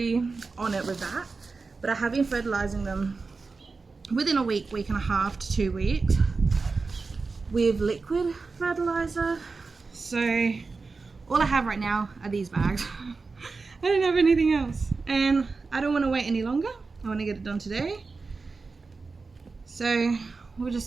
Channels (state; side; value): quieter; left; 4.2 dB